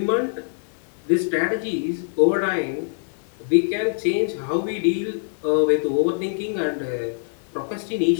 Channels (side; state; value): right; silent; 63 dB below the other